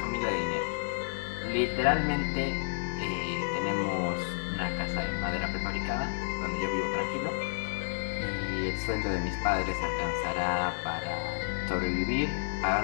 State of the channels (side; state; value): right; silent; digital silence